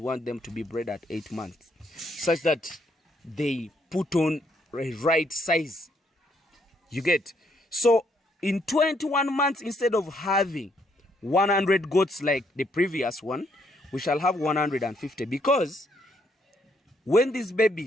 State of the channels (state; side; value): normal; both; correlation 0.72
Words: them to be bred at 8 months, such that they put on a right size. You get? So in 21 months, instead of having 100 goats like the previous one, we shall have 150, because when these